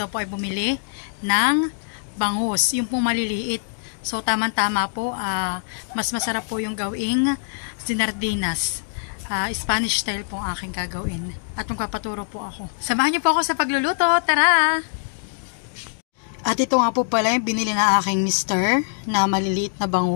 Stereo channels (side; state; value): right; silent; digital silence